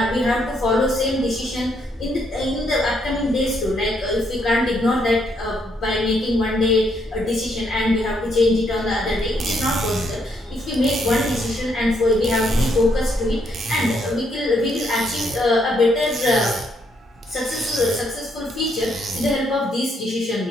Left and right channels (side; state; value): both; normal; correlation 0.73